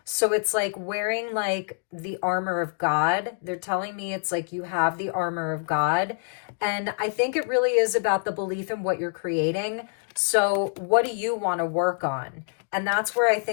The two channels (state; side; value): silent; right; digital silence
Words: So it's like wearing like the armor of God. They're telling me it's like you have the armor of God. And I think it really is about the belief in what you're creating. So what do you want to work on? And that's where I